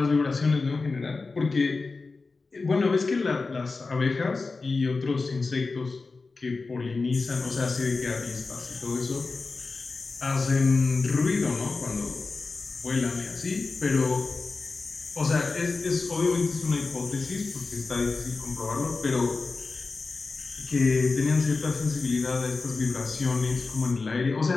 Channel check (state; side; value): quieter; right; 4.0 dB